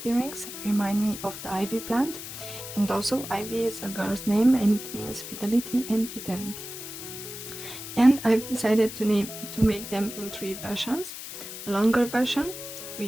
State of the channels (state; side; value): noise; left; hiss, 10 dB below the sound